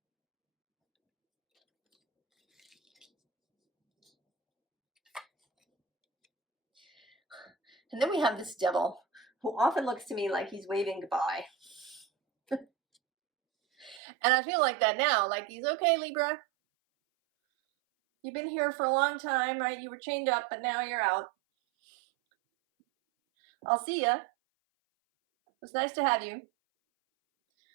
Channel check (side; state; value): left; drops out; at 14.0 s